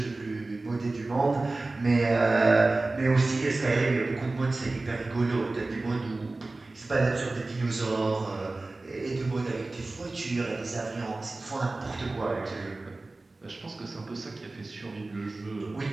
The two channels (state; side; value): quieter; left; 3.2 dB